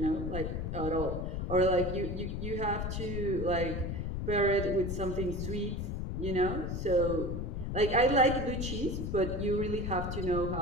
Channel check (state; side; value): noise; left; rumble, 3 dB below the sound